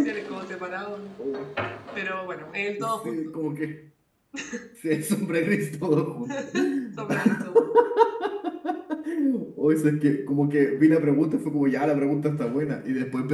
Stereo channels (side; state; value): both; identical; correlation 1.00